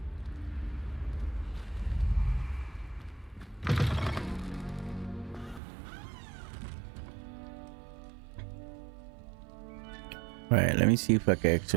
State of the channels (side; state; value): left; drops out; at 5.6 s